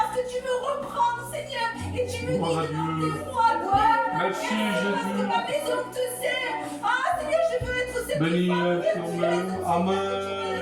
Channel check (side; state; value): both; identical; correlation 1.00